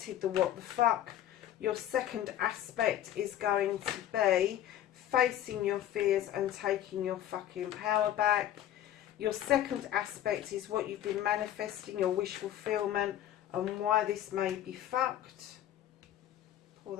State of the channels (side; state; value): right; quieter; 12.0 dB